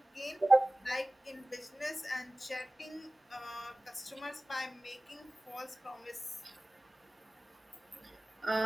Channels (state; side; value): normal; both; correlation 0.97